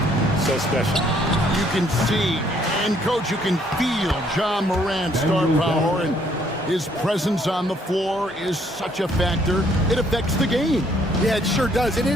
so special. You can see, and coach, you can feel John Morant's star power, and his presence on the floor is such a factor. It affects the game. Yeah, it sure does. And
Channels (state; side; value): normal; both; correlation 0.66